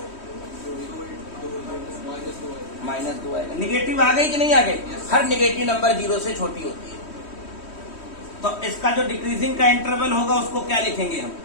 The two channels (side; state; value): right; late; 3.1 ms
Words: -2 आएगा। निगेटिव आ गई कि नहीं आ गई? हर निगेटिव नंबर 0 से छोटी होती है। तो इसका जो डिक्रीजिंग का इंटरवल होगा उसको क्या लिखेंगे हम?